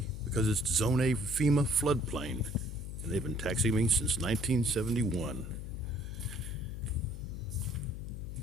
because it's Zone A FEMA floodplain, and they've been taxing me since 1971.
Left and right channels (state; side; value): noise; left; hum, 7 dB below the sound